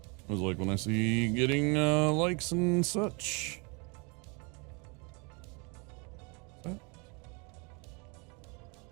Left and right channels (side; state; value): left; quieter; 31.4 dB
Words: I was like when I see getting likes and such.